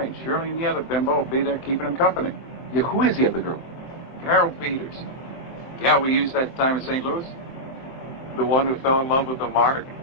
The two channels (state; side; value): late; right; 23 ms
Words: Shirley and the other bimbo will be there keeping him company. Yeah, who is the other girl? Carol Peters. Yeah, we used that time in St. Louis. The one who fell in love with the Mark?